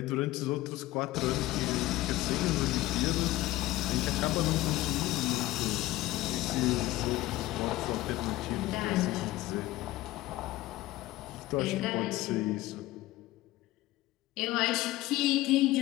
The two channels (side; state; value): right; quieter; 17.2 dB